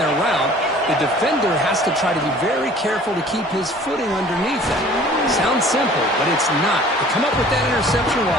route. The defender has to try to be very careful to keep his footing underneath it. Sounds simple, but it's not. To come up with that interception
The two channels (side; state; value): both; normal; correlation 0.50